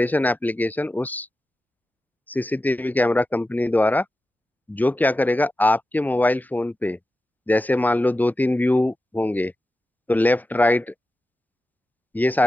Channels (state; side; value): normal; both; correlation 0.92